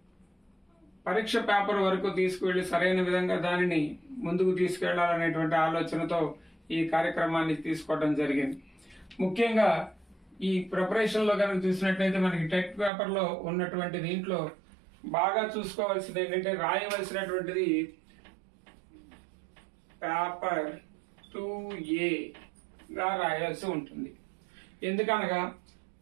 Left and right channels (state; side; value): drops out; left; at 12.9 s